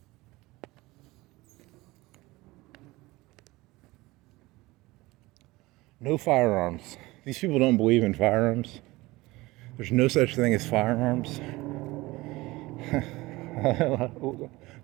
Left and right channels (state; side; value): quieter; left; 20.6 dB